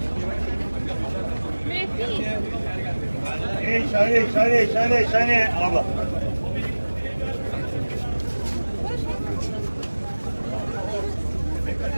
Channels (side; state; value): both; inverted; correlation -1.00